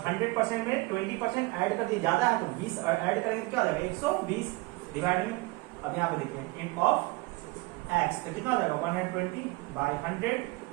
में 20% ऐड कर दिए, ज्यादा है तो 20 ऐड करेंगे तो क्या हो जाएगा 120 डिवाइड में। अब यहाँ पे देखिए इन ऑफ x, तो कितना हो जाएगा 120/100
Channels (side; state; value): left; quieter; 22.9 dB